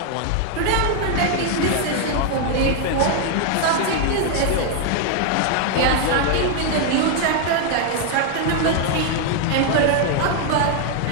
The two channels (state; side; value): different; both; correlation 0.00